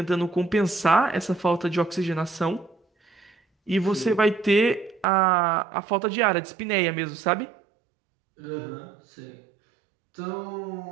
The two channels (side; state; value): left; drops out; at 5.1 s